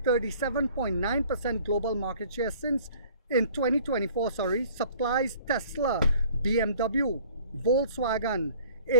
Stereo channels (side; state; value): both; inverted; correlation -0.51